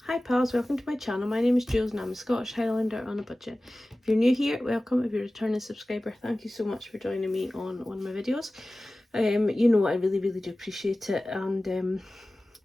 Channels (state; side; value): normal; both; correlation 0.97